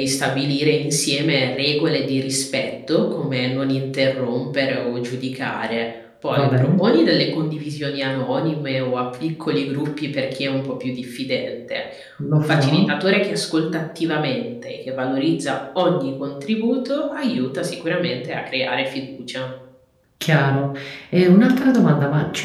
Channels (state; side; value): identical; both; correlation 1.00